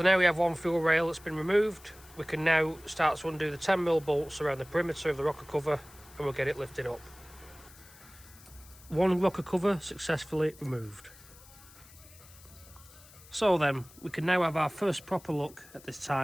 now we have one fuel rail that's been removed. We can now start to undo the 10mm bolts around the perimeter of the rocker cover, and we'll get it lifted up. One rocker cover successfully removed. So then, we can now have our first proper look at this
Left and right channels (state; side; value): noise; left; hiss, 22 dB below the sound